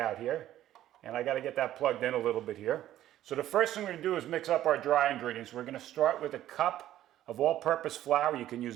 here. And I got to get that plugged in a little bit here. So the first thing we're going to do is mix up our dry ingredients. We're going to start with a cup of all-purpose flour. You can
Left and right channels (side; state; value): left; quieter; 12.9 dB